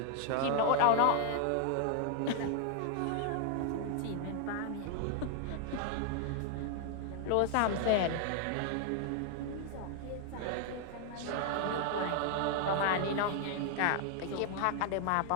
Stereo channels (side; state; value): both; different; correlation 0.00